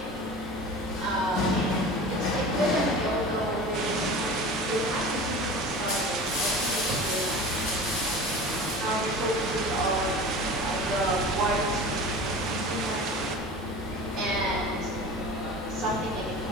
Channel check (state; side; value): normal; both; correlation 0.36